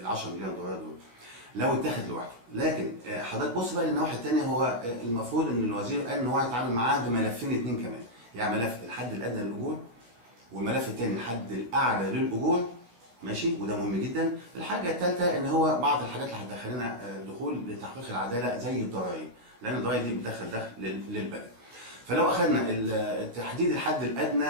10 مليار دولار دول لو اتاخد لوحده. لكن حضرتك بص بقى للنواحي الثانيه، هو المفروض ان الوزير قال ان هو هيتعامل معاه بملفين اثنين كمان، يعني ملف الحد الادنى للاجور والملف الثاني الحد الاعلى للاجور، ماشي، وده مهم جدا. الحاجه الثالثه ان هو بعض الحاجات اللي هتدخلنا دخول لتحقيق العداله زي الضرائب، لان الضرائب دي بتدخل دخل للبلد. فلو اخذنا تحديد الحد الادنى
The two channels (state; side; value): late; left; 16 ms